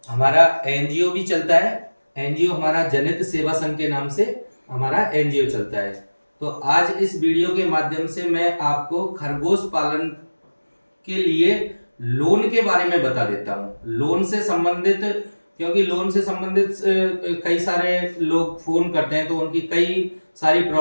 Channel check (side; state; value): both; inverted; correlation -1.00